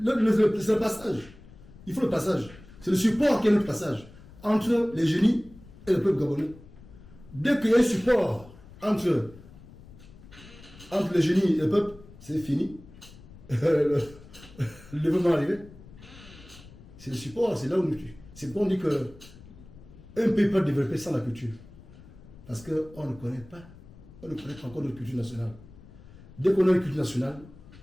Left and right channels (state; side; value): noise; left; rumble, 20 dB below the sound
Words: passage. Il faut le passage. C'est le support qui est notre passage entre les génies et le peuple gabonais. Dès qu'il y a un support entre les génies et le peuple, c'est fini. Le développement arrivé. C'est le support, c'est là où c'est pourquoi on dit que un pays peut développer sans la culture. Parce qu'on ne connaît pas encore notre culture nationale. Dès qu'on a une culture nationale,